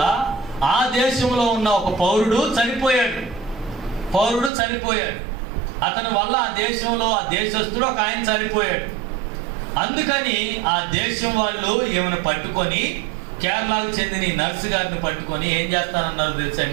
ఆ దేశంలో ఉన్న ఒక పౌరుడు చనిపోయాడు. అతని వల్ల ఆ దేశంలో ఆ దేశస్తుడు ఒక ఆయన చనిపోయాడు. అందుకని ఆ దేశం వాళ్ళు ఏమైనా పట్టుకొని, కేరళకు చెందిన ఈ నర్సు గారిని పట్టుకొని ఏం చేస్తానన్నారు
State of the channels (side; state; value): left; drops out; at 4.5 s